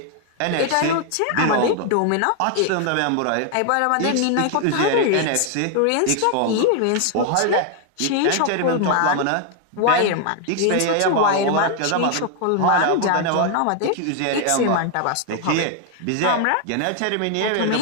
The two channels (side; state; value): both; different; correlation 0.00